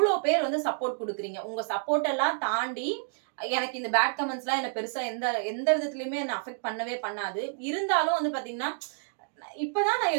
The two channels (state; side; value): silent; left; digital silence